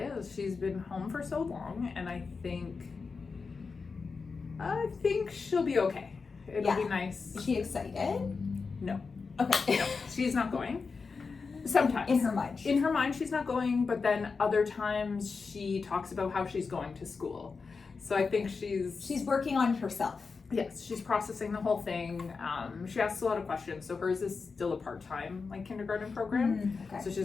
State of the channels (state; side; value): quieter; right; 4.8 dB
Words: She's been home for so long, and I think she'll be okay. It'll be nice. Is she excited? No. Okay. No, she's not going. Sometimes. In her mind. In her mind, she's not going, but then other times she talks about how she's going to school. So I think she's working on it herself. Yes, she's processing the whole thing. She asks a lot of questions. So hers is still a part-time kindergarten program. Okay. So